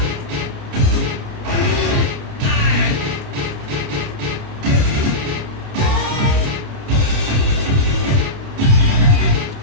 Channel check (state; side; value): late; left; 30 ms